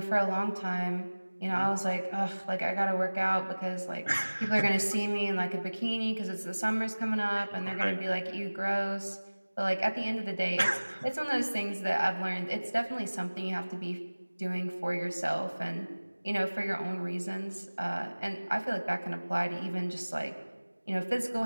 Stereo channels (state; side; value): inverted; both; correlation -1.00